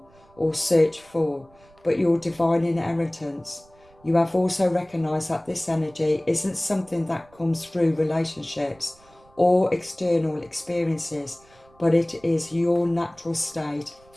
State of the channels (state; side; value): noise; right; rumble, 29 dB below the sound